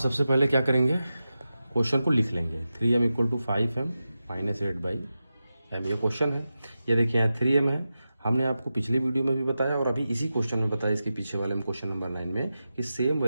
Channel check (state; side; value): inverted; both; correlation -0.92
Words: पहले क्या करेंगे, क्वेश्चन को लिख लेंगे। 3m = 5m - 8/m, ये क्वेश्चन है। ये देखिए यहाँ 3m है, हमने आपको पिछले वीडियो में भी बताया और अभी इसी क्वेश्चन में बताया, इसके पीछे वाले में क्वेश्चन नंबर 9 में, कि सेम